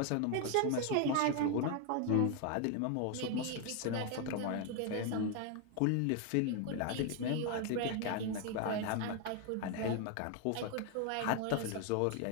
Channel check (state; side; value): different; both; correlation 0.01